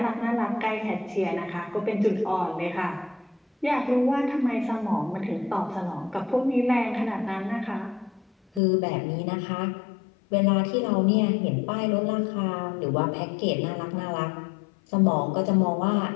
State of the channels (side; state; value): right; drops out; at 8.6 s